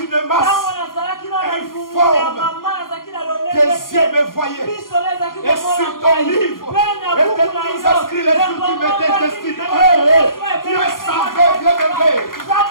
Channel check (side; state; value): right; late; 0.91 ms